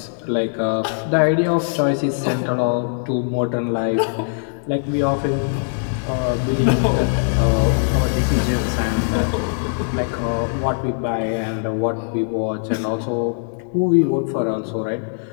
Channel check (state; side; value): silent; right; 57 dB below the other